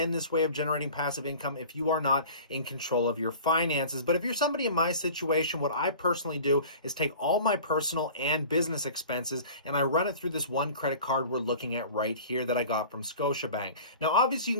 this way of generating passive income if you are not in control of your finances. But if you're somebody in my situation, what I personally do is take all my personal and business expenses and I run it through this one credit card we're looking at right here that I got from Scotiabank. Now, obviously, you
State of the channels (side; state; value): both; inverted; correlation -0.41